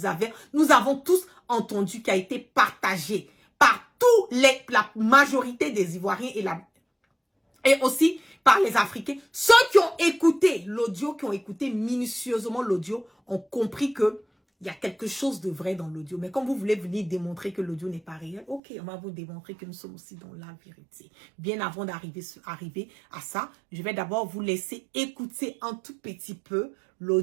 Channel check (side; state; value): left; drops out; at 18.6 s